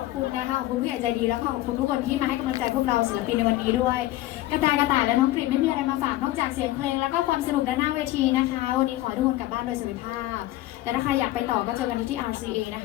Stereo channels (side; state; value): right; quieter; 16.3 dB